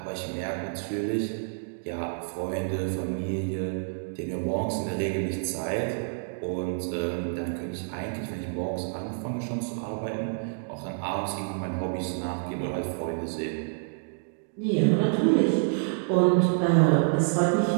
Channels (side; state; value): left; silent; digital silence